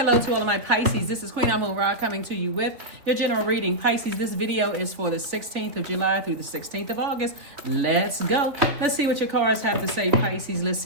to all of my Pisces. This is Queen Amun Ra coming to you with your general reading. Pisces, this video is for the 16th of July through the 16th of August. Let's go. Let's see what your cards have to say, Pisces. Let's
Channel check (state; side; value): late; left; 3.3 ms